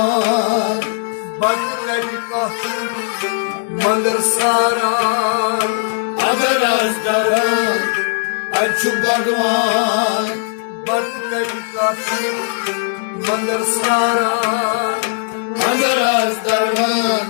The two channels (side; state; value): right; silent; digital silence